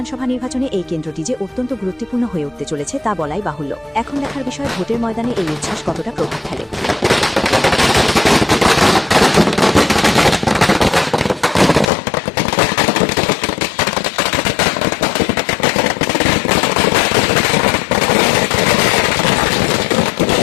নির্বাচনে এই কেন্দ্রটি যে অত্যন্ত গুরুত্বপূর্ণ হয়ে উঠতে চলেছে তা বলাই বাহুল্য। এখন দেখার বিষয় ভোটের ময়দানে এই উচ্ছ্বাস কতটা প্রভাব ফেলে।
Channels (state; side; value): drops out; right; at 11.9 s